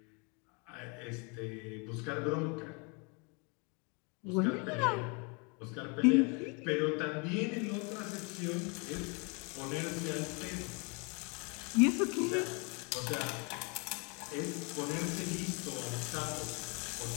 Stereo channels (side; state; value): right; quieter; 32.5 dB